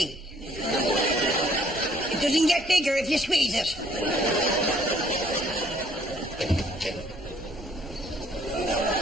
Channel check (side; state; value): both; normal; correlation 0.62